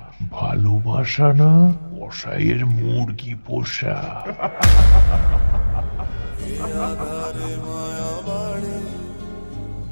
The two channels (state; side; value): inverted; both; correlation -1.00